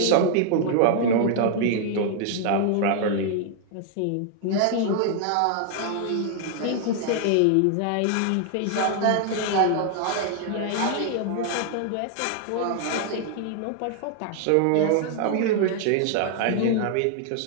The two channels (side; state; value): both; different; correlation 0.00